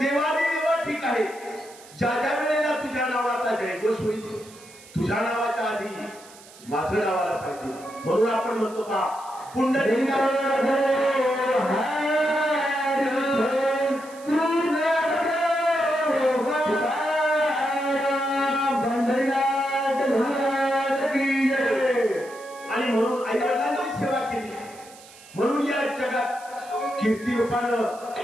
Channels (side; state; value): right; noise; hiss, 21 dB below the sound